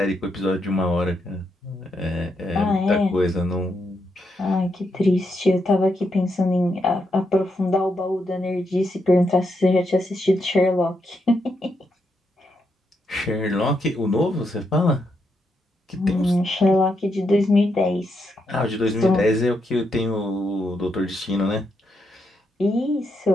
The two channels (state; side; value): normal; both; correlation 0.81